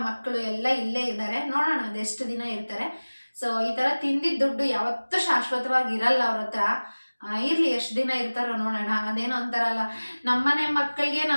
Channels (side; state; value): both; inverted; correlation -1.00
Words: ಮಕ್ಕಳು ಎಲ್ಲ ಇಲ್ಲೇ ಇದ್ದಾರೆ, ನೋಡೋಣ ಅದೆಷ್ಟು ದಿನ ಇರ್ತಾರೆ. ಸೊ ಈ ತರ ತಿಂದಿದ್ದ ದುಡ್ಡು ಯಾವತ್ತೂ ಶಾಶ್ವತವಾಗಿ ಇರಲ್ಲ ಅವ್ರ ಹತ್ರ. ಇರ್ಲಿ, ಎಷ್ಟು ದಿನ ಇರ್ತಾರೋ ನೋಡೋಣ. ಅದೇನೋ ಅಂತಾರಲ್ಲ, ನಮ್ಮನೆ ಮಕ್ಕಳಿಗೆ